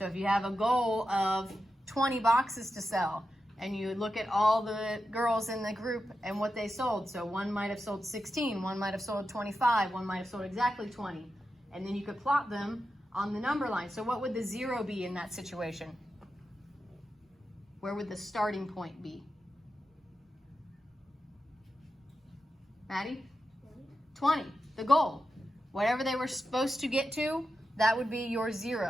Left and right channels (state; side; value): normal; both; correlation 0.90